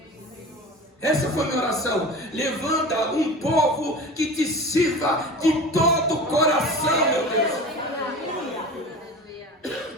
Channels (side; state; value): both; normal; correlation 0.34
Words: Essa foi a minha oração. Levanta um povo que te sirva de todo o coração, meu Deus.